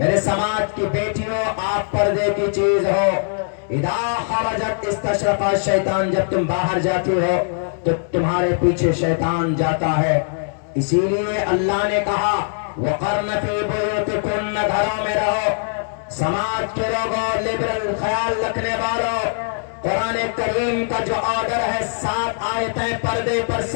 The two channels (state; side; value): silent; right; digital silence